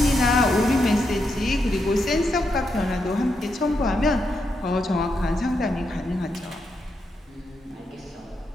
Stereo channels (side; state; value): both; normal; correlation 0.82